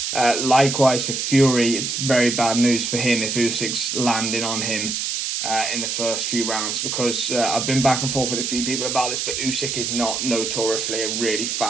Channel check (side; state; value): right; noise; hiss, 2 dB below the sound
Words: Likewise for Fury, it's very bad news for him if Usyk's landing on him in the first few rounds, because I've been back and forth with a few people about this, but Usyk is not notoriously a really